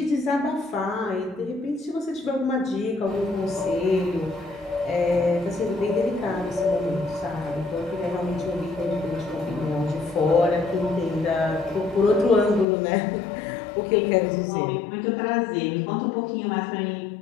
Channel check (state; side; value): drops out; right; at 12.7 s